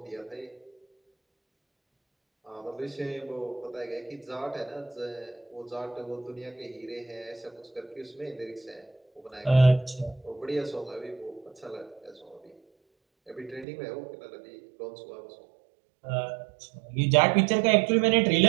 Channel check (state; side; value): drops out; left; at 13.7 s